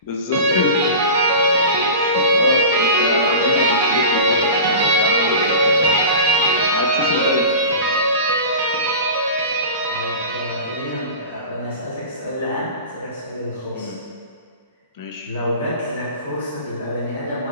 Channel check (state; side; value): inverted; both; correlation -0.33